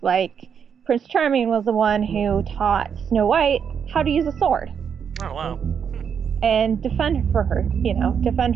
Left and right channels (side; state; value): left; quieter; 7.3 dB